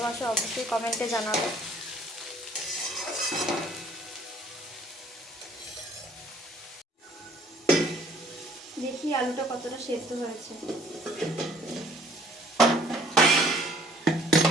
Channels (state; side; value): normal; both; correlation 0.58